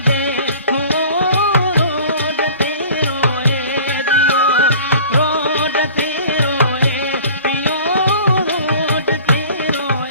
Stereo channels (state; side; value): inverted; both; correlation -0.45